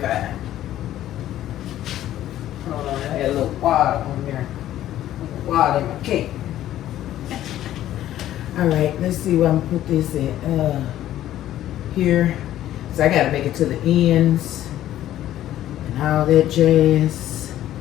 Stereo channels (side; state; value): right; quieter; 12.9 dB